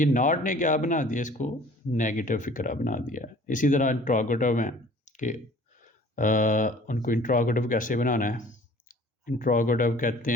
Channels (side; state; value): both; normal; correlation 0.50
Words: नॉट ने क्या बना दिया? इसको नेगेटिव फिक्रा बना दिया है। इसी तरह इंट्रोगेटिव हैं कि उनको इंट्रोगेटिव कैसे बनाना है? इंट्रोगेटिव कहते